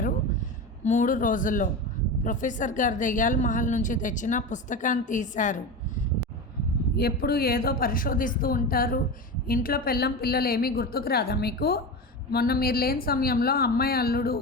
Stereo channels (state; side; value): normal; both; correlation 0.24